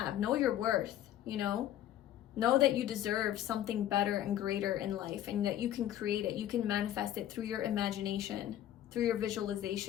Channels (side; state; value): right; quieter; 12.0 dB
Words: Know your worth, you know? Know that you deserve something better and greater in life, and that you can create it. You can manifest it through your imagination, through your